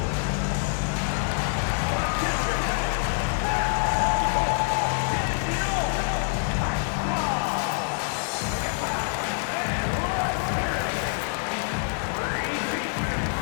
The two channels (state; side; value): silent; right; 61 dB below the other